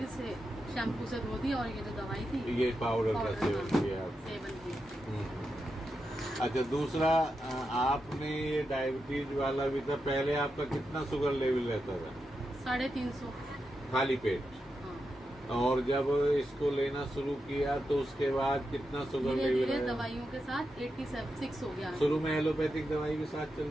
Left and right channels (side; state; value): both; normal; correlation 0.87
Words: इसे शैम्पू से धो दिया और ये जो दवाई थी ये पाउडर का पाउडर, सेवन हाँ, किया आप? सेवन किया। अच्छा, दूसरा आपने ये डायबिटीज वाला भी था, पहले आपका कितना शुगर लेवल रहता था? 350। खाली पेट? हाँ, और जब इसको लेना शुरू किया तो उसके बाद कितना शुगर धीरे लेवल धीरे है? दवाइयों के साथ 86 हो गया। शुरू में एलोपैथिक दवाई के साथ